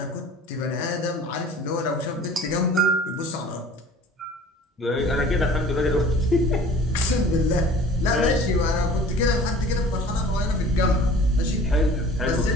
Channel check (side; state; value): both; normal; correlation 0.46